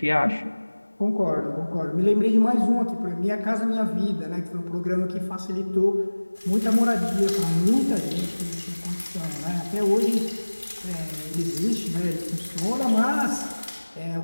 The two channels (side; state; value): both; inverted; correlation -1.00